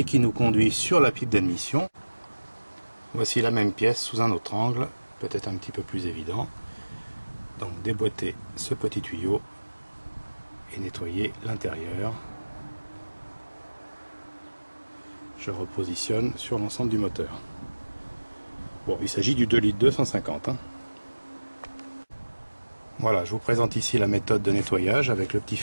qui nous conduit sur la pipe d'admission. Voici la même pièce sous un autre angle, peut-être un petit peu plus évident. Donc déboîter ce petit tuyau et nettoyer l'intérieur. Je repositionne sur l'ensemble du moteur. Bon, il s'agit du 2 litres 250. Voilà, je vous présente ici la méthode de nettoyage avec le petit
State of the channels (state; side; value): inverted; both; correlation -1.00